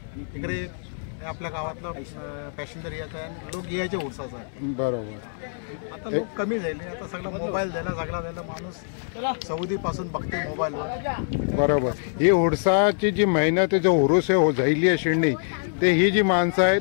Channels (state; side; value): silent; right; digital silence